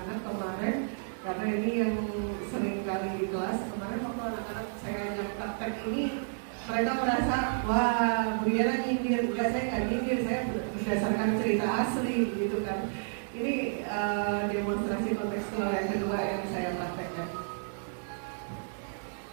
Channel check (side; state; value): left; silent; digital silence